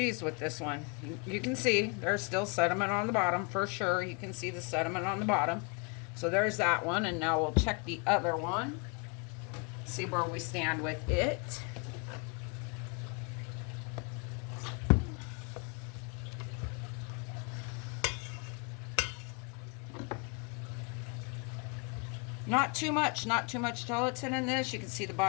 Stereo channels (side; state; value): right; quieter; 34.5 dB